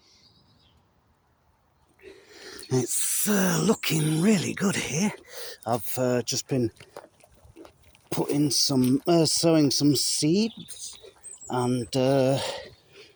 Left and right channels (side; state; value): both; identical; correlation 1.00